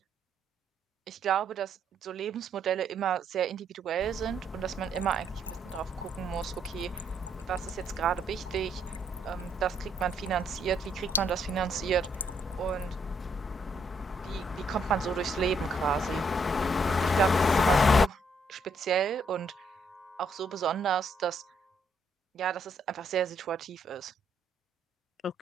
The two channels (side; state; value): both; normal; correlation 0.72